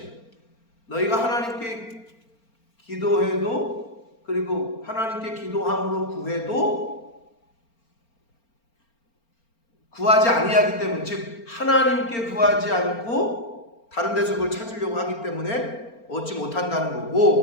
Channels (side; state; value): right; late; 4.4 ms